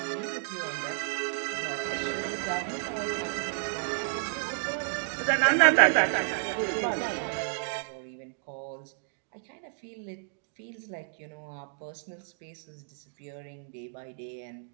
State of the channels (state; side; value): silent; left; digital silence